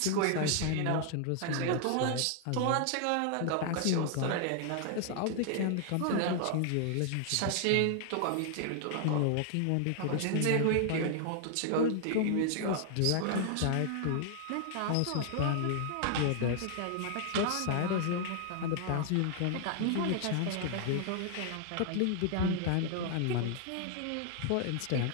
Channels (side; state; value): both; different; correlation 0.00